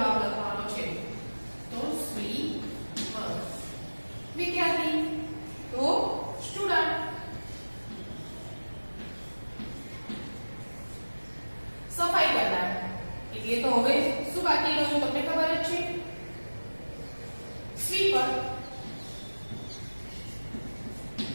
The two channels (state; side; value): inverted; both; correlation -1.00